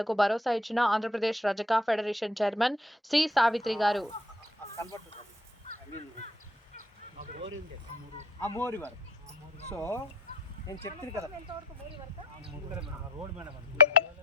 భరోసా ఇచ్చిన ఆంధ్రప్రదేశ్ రజక ఫెడరేషన్ చైర్మన్ సి. సావిత్రి గారు. సో నేను చెప్తుంది కదా రోడ్ మేడం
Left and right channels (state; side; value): normal; both; correlation 0.57